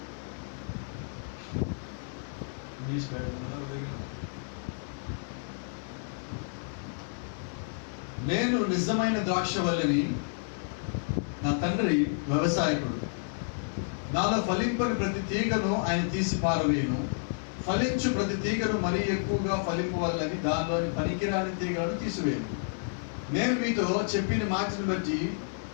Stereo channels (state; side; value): silent; right; 58 dB below the other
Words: నేను నిజమైన ద్రాక్షవల్లిని, నా తండ్రి వ్యవసాయకుడు. నాలో ఫలింపని ప్రతి తీగను ఆయన తీసి పారవేయును, ఫలించు ప్రతి తీగను మరీ ఎక్కువగా ఫలింపవల్లని దానిలోని పనికిరాని తీగలను తీసివేయను. నేను మీతో చెప్పిన మాటను బట్టి